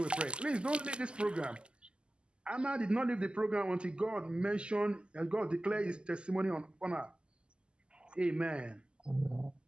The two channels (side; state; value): left; late; 0.050 ms